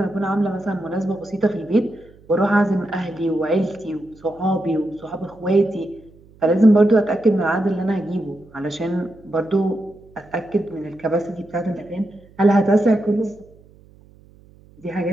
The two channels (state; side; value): noise; right; hum, 26 dB below the sound